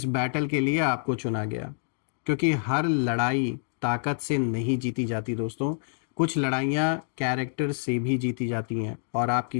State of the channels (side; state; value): right; silent; digital silence